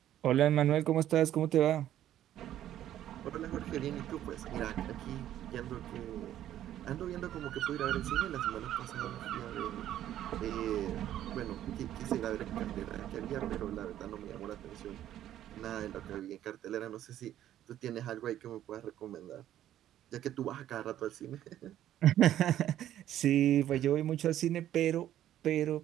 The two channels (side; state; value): left; quieter; 12.0 dB